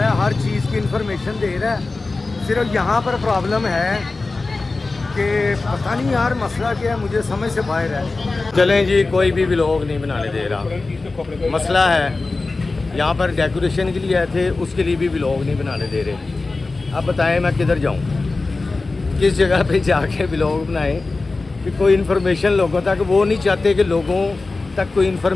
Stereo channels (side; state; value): right; quieter; 3.6 dB